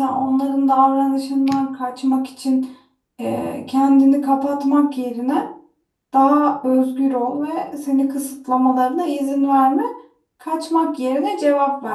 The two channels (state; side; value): identical; both; correlation 1.00